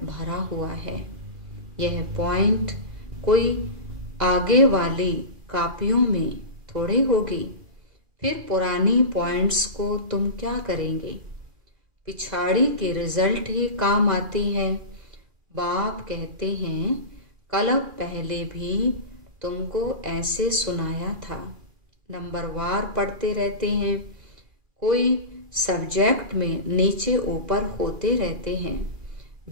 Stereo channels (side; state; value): left; late; 2.4 ms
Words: भरा हुआ है। यह पॉइंट कोई आगे वाली कापियों में थोड़ी होगी। फिर पुरानी पॉइंट्स को तुम क्या करेंगे, पिछाड़ी के रिजल्ट ही काम आती है। बाप कहते हैं कल पहले भी तुमको ऐसे सुनाया था। नंबरवार पढ़ते रहते हैं, कोई सब्जेक्ट में नीचे ऊपर होते रहते हैं।